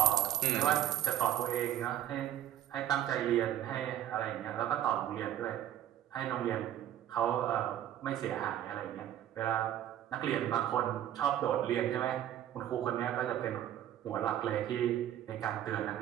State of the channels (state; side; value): quieter; left; 11.8 dB